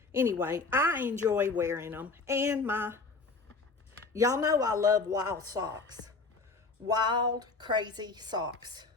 Anyway, I enjoy wearing them. And y'all know I love wild socks. Wild, crazy socks.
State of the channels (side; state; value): right; quieter; 4.0 dB